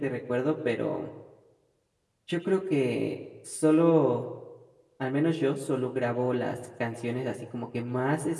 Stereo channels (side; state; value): both; identical; correlation 1.00